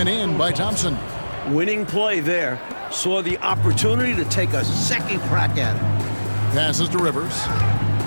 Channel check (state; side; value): inverted; both; correlation -1.00